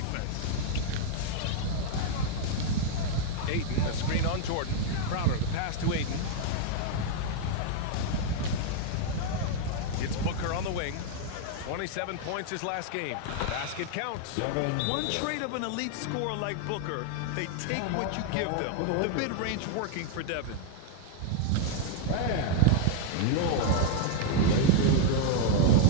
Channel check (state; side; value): different; both; correlation 0.00